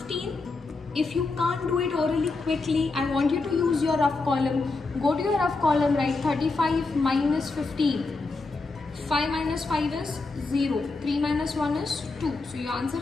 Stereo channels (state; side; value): quieter; right; 3.7 dB